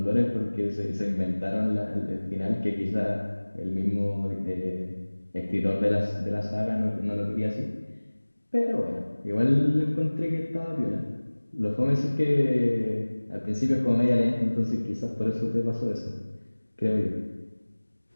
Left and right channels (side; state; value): both; inverted; correlation -1.00